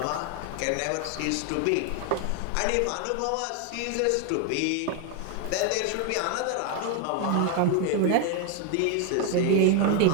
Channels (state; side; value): different; both; correlation 0.01